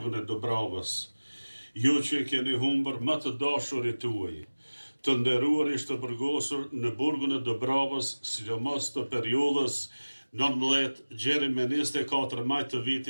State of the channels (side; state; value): both; inverted; correlation -1.00